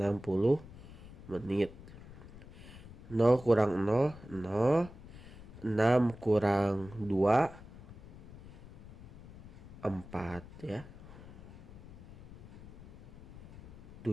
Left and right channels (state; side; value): noise; left; rumble, 16 dB below the sound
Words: menit. 0 kurang 0 0. 6 kurang 2 4 ya.